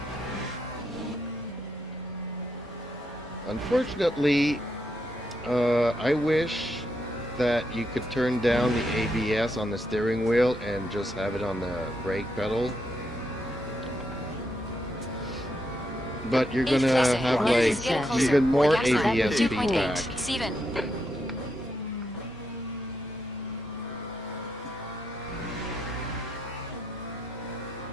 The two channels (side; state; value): both; normal; correlation 0.81